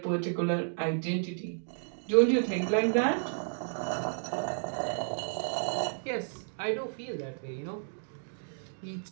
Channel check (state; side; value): silent; left; digital silence